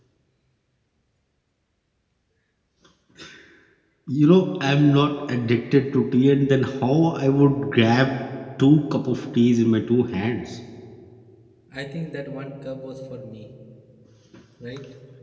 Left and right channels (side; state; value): both; identical; correlation 1.00